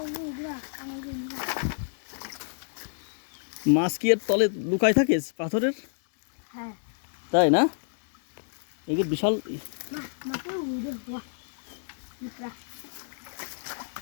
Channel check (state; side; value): silent; right; digital silence